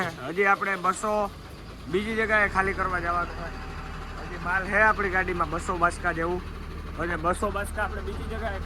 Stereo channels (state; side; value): identical; both; correlation 1.00